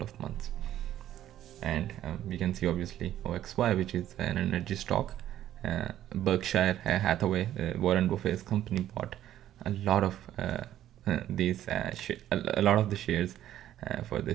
of months. And we can see obviously OXY, which is an energy stock. Berkshire Hathaway, Warren Buffett's company, bought a lot of a lot of the shares for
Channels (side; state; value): left; quieter; 12.2 dB